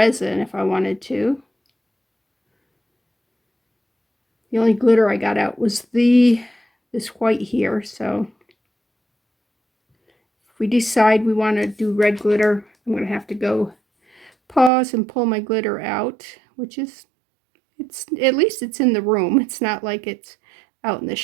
if I wanted to. The only glitter I got out was this white here, so if we decide we want to do red glitter, I'm going to have to go pause and pull my glitter out, which is, at least it's in the room. It's not like it's out in the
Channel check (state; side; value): drops out; left; at 14.7 s